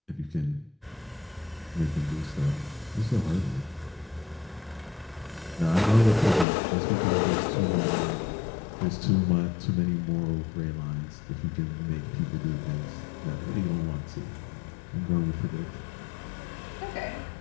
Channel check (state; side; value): drops out; right; at 6.5 s